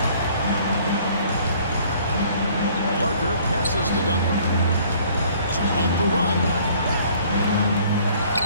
Parker passes to Duncan. So off the run.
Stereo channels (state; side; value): inverted; both; correlation -0.57